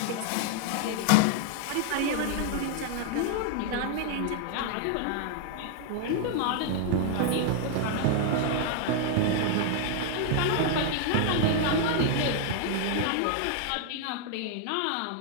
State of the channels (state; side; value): different; both; correlation 0.00